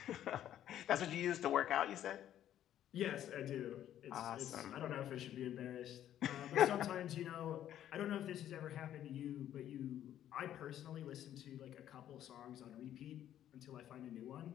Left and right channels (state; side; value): quieter; right; 11.3 dB